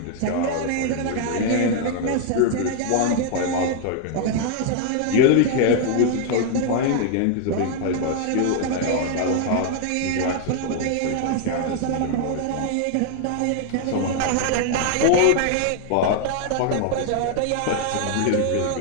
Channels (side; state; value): both; different; correlation 0.00